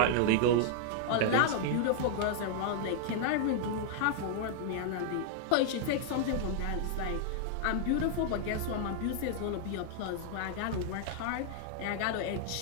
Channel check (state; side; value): different; both; correlation -0.01